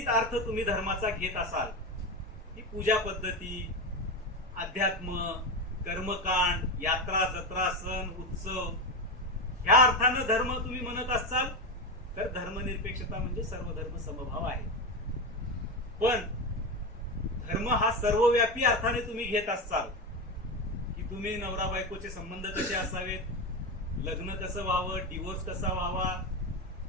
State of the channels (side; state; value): both; normal; correlation 0.17